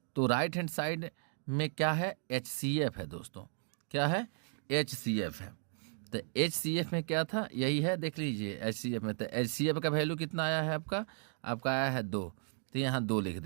तो राइट हैंड साइड में क्या है, HCF है दोस्तों, क्या है HCF है। तो HCF में क्या था, यही है, देख लीजिए HCF में। तो HCF का वैल्यू कितना आया है आपका आया है 2, तो यहाँ 2 लिख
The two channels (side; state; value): left; silent; 54 dB below the other